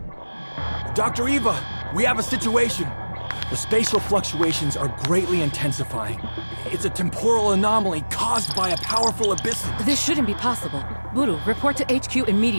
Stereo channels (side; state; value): both; inverted; correlation -1.00